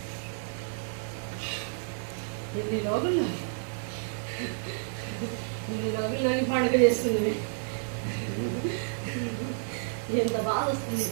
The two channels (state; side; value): silent; left; 58 dB below the other